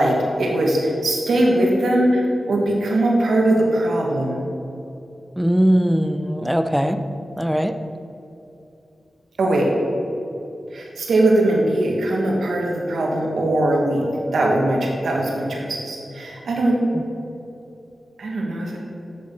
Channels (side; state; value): both; normal; correlation 0.92